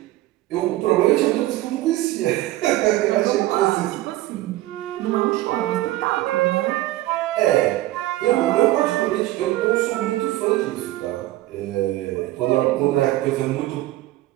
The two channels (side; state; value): left; quieter; 16.5 dB